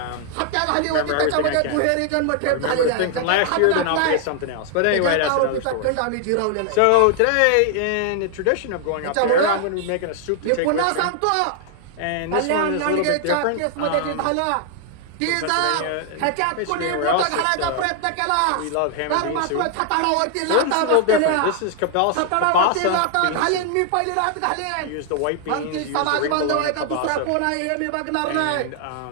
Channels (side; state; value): both; different; correlation 0.00